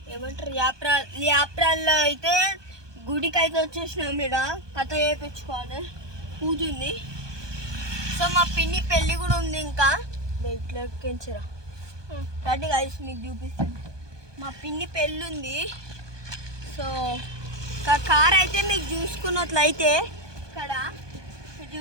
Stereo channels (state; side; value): late; left; 1.2 ms